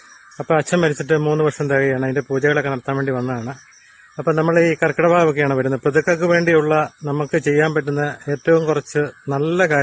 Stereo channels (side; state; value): both; identical; correlation 1.00